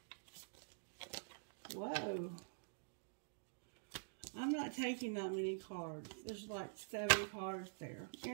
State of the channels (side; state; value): left; silent; digital silence